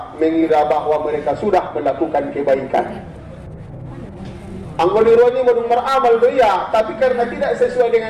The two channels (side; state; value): both; identical; correlation 1.00